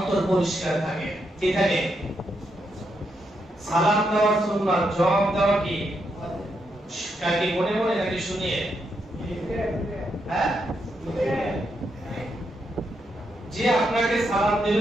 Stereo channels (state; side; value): normal; both; correlation 0.81